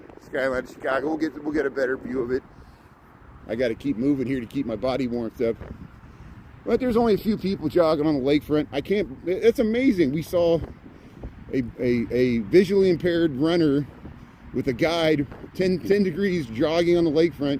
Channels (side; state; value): both; identical; correlation 1.00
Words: skyline of Chicago. We'll get a better view of it. I got to keep moving here to keep my body warmed up. But there's only a few people jogging on the lakefront. I can't. It's amazing. We saw a visually impaired runner with a guide, 10 degrees, jogging on the